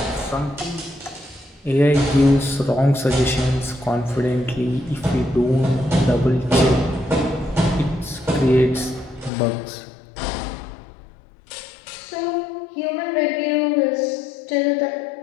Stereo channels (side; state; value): right; drops out; at 9.3 s